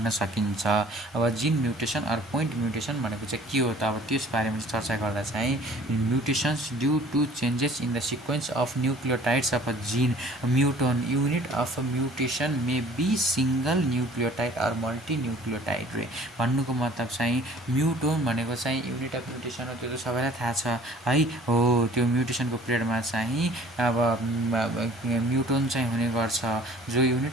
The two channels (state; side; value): normal; both; correlation 0.51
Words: सकिन्छ। अब gene mutation or point mutation भनेको चाहिँ के हो त, अब त्यस बारेमा चर्चा गर्दा चाहिँ mutations due to changes in the sequence of nucleotides of a gene muton unit of a mutation may be single nucleotide or multi nucleotide रे। भन्नुको मतलब चाहिँ म्युटोन भनेको चाहिँ युनिट अफ म्युटेसन हो, त्यो त सबैलाई थाहा छ है हो। त्यो म्युटेसनको पिरियडमा चाहिँ अब म्युटोन चाहिँ हुने गर्छ, जो